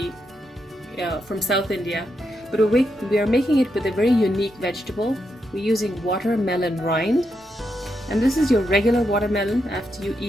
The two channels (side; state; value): both; normal; correlation 0.83